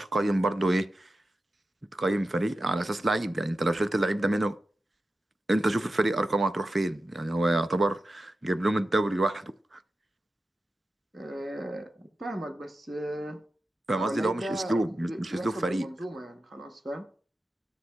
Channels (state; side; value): normal; both; correlation 0.92